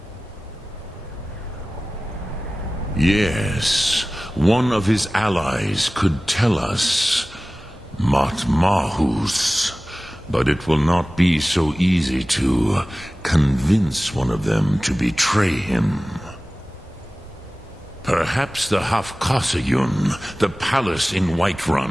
Yes, one of his allies could tell us Matmahus, but it will not be so easy to convince one of them to betray him. Perhaps the Hafkasayun, the palace in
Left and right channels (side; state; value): both; normal; correlation 0.97